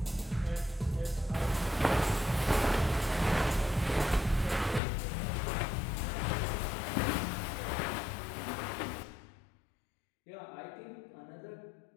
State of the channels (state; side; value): drops out; right; at 4.8 s